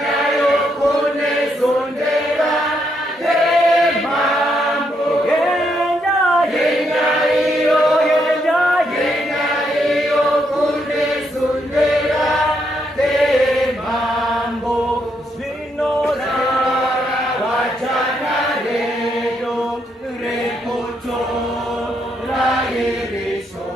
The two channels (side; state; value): both; normal; correlation 0.77